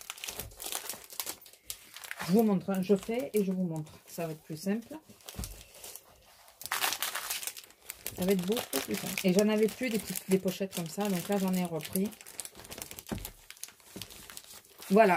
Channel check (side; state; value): both; identical; correlation 1.00